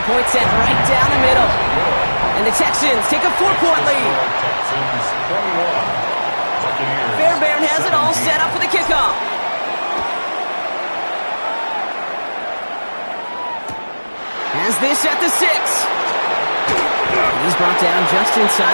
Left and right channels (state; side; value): inverted; both; correlation -1.00